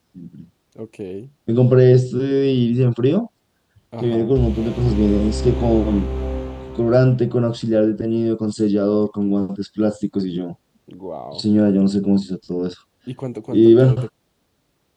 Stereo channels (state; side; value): identical; both; correlation 1.00